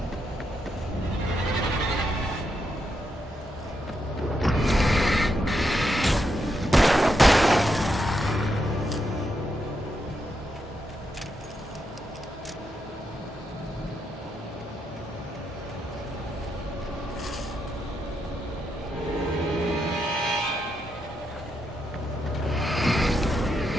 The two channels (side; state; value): both; normal; correlation 0.82